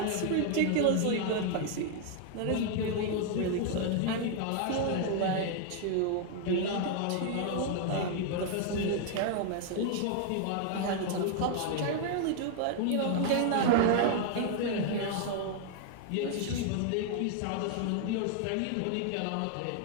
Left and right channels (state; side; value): different; both; correlation 0.00